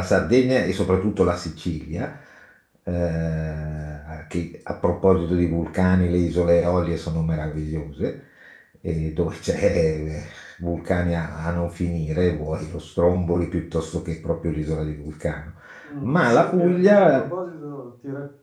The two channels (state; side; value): identical; both; correlation 1.00